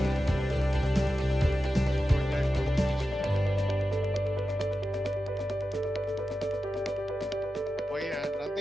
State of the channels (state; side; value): normal; both; correlation 0.92